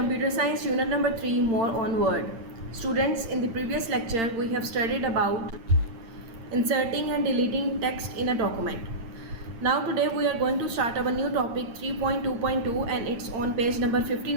Science, Unit number 3, More on Word. Students, in the previous lecture, we have studied about inserting and deleting text in a document. Now today we are going to start our new topic 3.2.2 and it's on page number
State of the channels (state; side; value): late; left; 8.8 ms